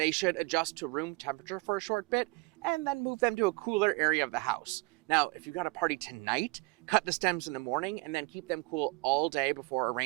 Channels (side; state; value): left; quieter; 25.1 dB